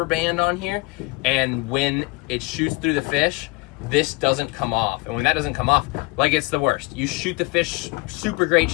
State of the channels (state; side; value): quieter; right; 24.6 dB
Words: band on here, and when it shoots through the fish, this doesn't come off. And when that doesn't come off, like, it's the worst. You shoot the fish, super great